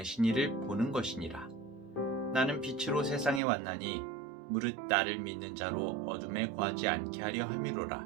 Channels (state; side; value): drops out; left; at 3.4 s